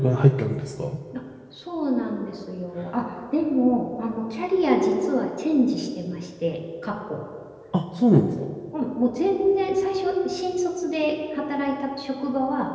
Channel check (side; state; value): both; identical; correlation 1.00